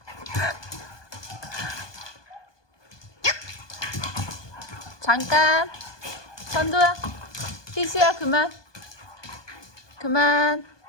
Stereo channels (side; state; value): right; late; 1.2 ms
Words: 잠깐. 천도야, 희수야, 그만. 그만.